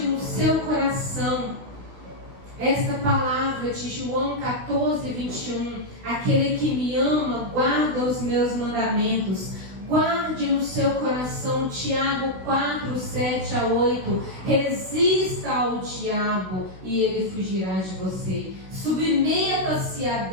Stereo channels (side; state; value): left; late; 16 ms